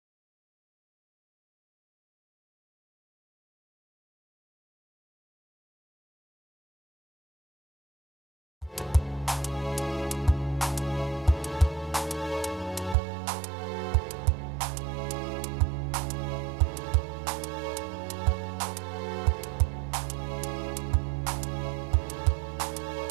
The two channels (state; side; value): drops out; left; at 13.0 s